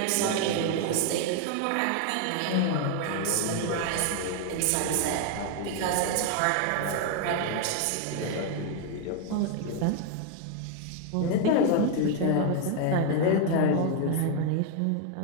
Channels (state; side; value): different; both; correlation 0.01